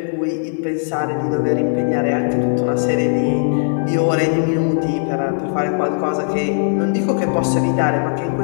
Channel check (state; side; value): silent; right; digital silence